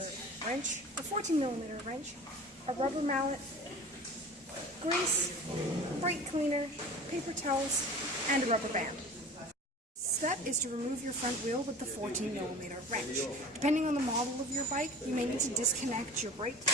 wrench, a 14mm wrench, a rubber mallet, grease, brake cleaner, paper towels, and a rubber band. Step is to remove your front wheel with the 14mm wrench. Depending on the model of your bike, you may need to disconnect your brake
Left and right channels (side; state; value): both; normal; correlation 0.39